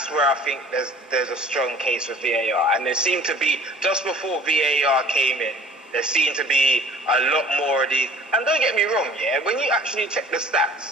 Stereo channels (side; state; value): both; normal; correlation 0.49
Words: where I think there's a strong case for VAR, and there seemed to be, just before VAR came in, there seemed to be a lot more of these. And don't get me wrong, when you actually check the